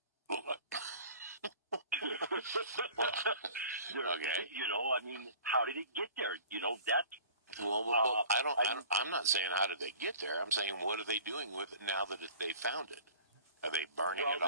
Okay. How did it get there? That's well, I'm not saying how did they get there. I'm saying what are they doing with it now that they found it? Are they burning it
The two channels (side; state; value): both; inverted; correlation -0.46